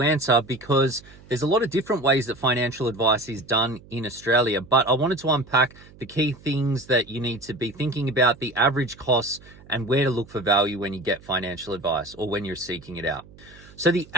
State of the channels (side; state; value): right; noise; hum, 23 dB below the sound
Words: answer because there's a lot of different ways that financial advice is done in Australia. But I wanted to unpack the key things that you need to be thinking about, the average costs, and where to look for value when you get financial advice or when you're seeking it out. So the